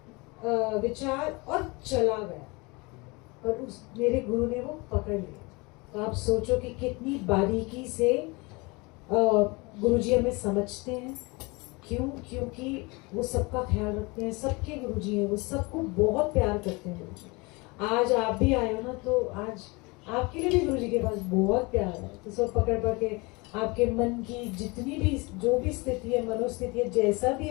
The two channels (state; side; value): quieter; right; 26.3 dB